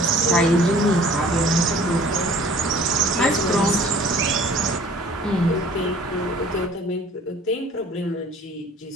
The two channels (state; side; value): normal; both; correlation 0.50